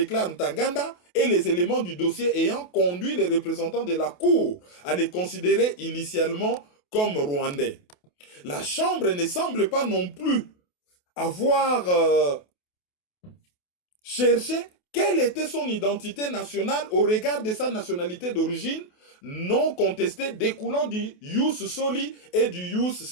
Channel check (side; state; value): right; late; 28 ms